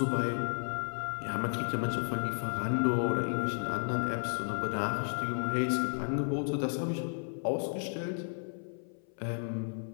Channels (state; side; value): silent; right; 56 dB below the other